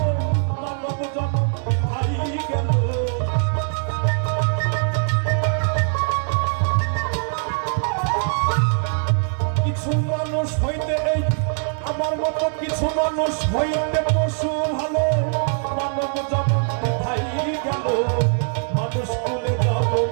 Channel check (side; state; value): left; silent; digital silence